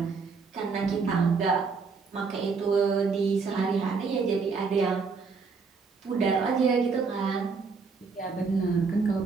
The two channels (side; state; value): left; quieter; 4.9 dB